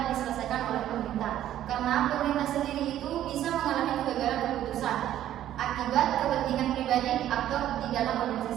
diselesaikan oleh pemerintah, karena pemerintah sendiri itu bisa mengalami kegagalan keputusan akibat kepentingan pribadi aktor di dalam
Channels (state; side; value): quieter; left; 12.1 dB